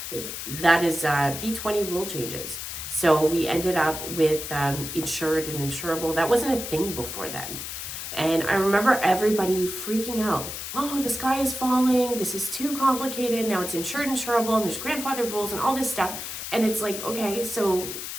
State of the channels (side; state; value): left; noise; hiss, 7 dB below the sound